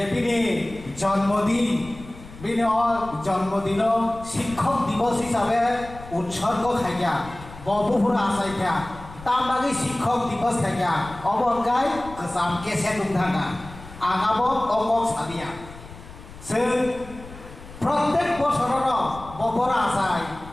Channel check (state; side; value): noise; left; rumble, 17 dB below the sound